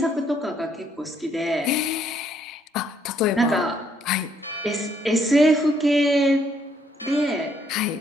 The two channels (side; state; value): both; normal; correlation 0.69